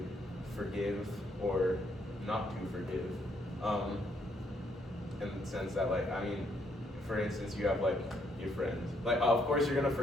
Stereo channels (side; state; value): both; normal; correlation 0.72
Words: forgive or not to forgive. In the sense that, like, I mean, for instance, you have like your friends. Like, of course you're gonna